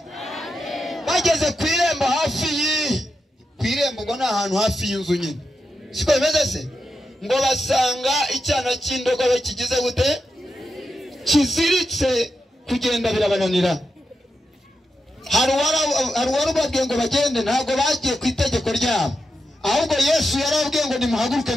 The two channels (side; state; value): both; normal; correlation 0.87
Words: bageze ku irembo hafi ku irembo ngo ni ahantu hafi y'inzu nyine siko bimeze se ngo basanga icyana cy'indogobe kigize gute kiziritse kugenda birabananira hari warubabwiye ngo bagende ntabwo bagiye ku itegeko ryabo ahubwo Yesu yarababwiye ngo nimuhaguruke